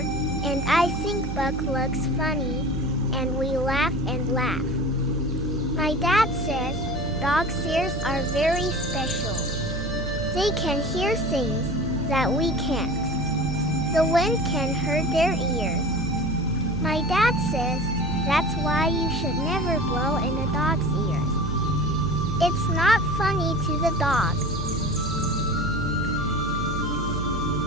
and I think Buck looks funny, and we laugh and laugh. My dad says dogs' ears are very special. They can hear things that we can't. The wind can hurt their ears. My dad says that's why you should never blow in a dog's ears. It's not funny to the dog.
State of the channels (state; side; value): noise; right; hum, 6 dB below the sound